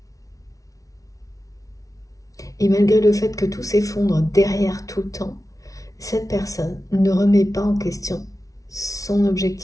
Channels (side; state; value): right; late; 0.17 ms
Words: Et malgré le fait que tout s'effondre derrière tout le temps, cette personne ne remet pas en question son